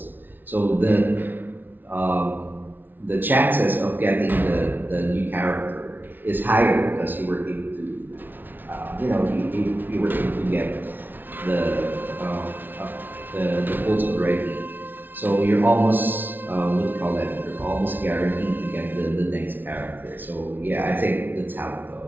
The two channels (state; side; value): late; left; 0.091 ms